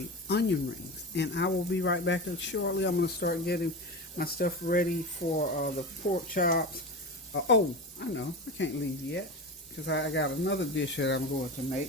onion rings. And I will be right back shortly. I'm going to start getting my stuff ready for the pork chops. Oh, I know, I can't leave yet, because I got another dish that I'm going to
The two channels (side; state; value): both; normal; correlation 0.25